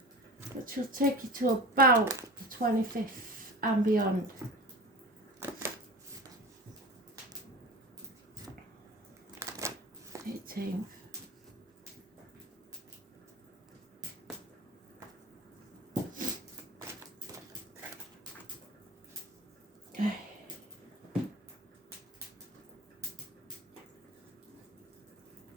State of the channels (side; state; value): both; normal; correlation 0.34